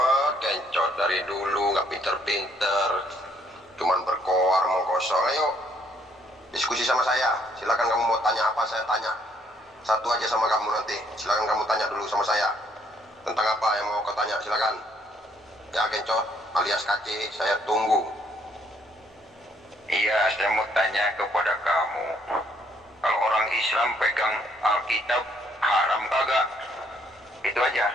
Kencot dari dulu nggak pinter-pinter, cuman berkoar mengkosong. Ayo diskusi sama saya, silakan kamu mau tanya apa saya tanya. Satu aja sama kamu nanti, silakan kamu tanya dulu sama saya. Tentang apa yang mau kau tanya, silakan. Ya Kencot alias KC, saya tunggu. Iya, saya mau tanya kepada kamu, kalau orang Islam pegang Alkitab haram kagak? Itu aja.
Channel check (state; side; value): normal; both; correlation 0.68